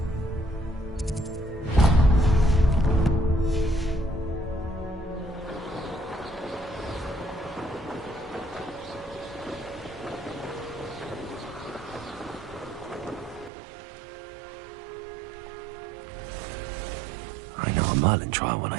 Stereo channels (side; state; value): left; drops out; at 13.5 s